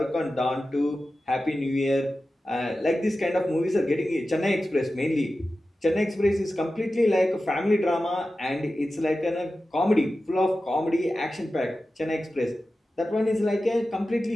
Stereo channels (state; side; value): normal; both; correlation 0.94